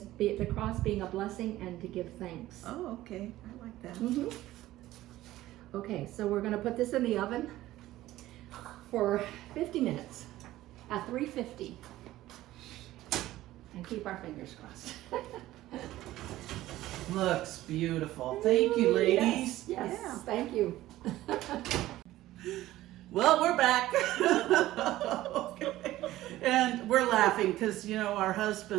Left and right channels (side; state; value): left; quieter; 15.6 dB